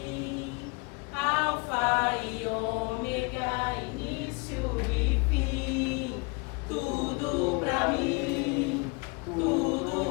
Alfa e ômega, início e fim, tudo pra mim,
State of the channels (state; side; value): quieter; right; 30.3 dB